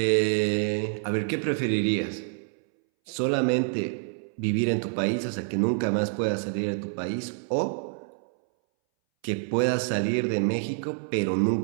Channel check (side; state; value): left; silent; 60 dB below the other